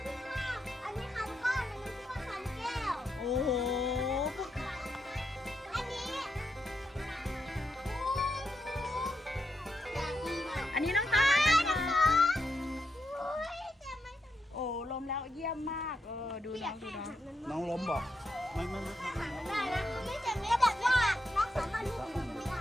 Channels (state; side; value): normal; both; correlation 0.83